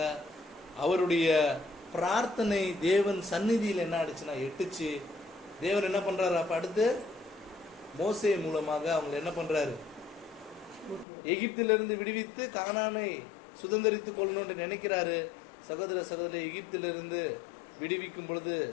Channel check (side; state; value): right; drops out; at 11.1 s